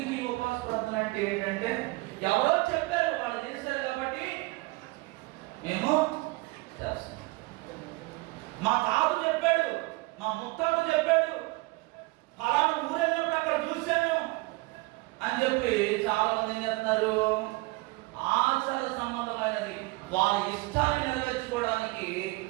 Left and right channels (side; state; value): left; quieter; 23.5 dB